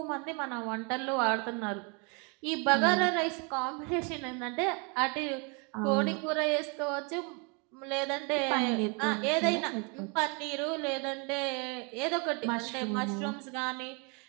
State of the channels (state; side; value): quieter; left; 33.4 dB